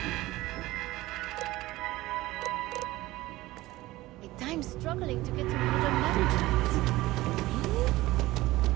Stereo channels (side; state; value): left; quieter; 18.1 dB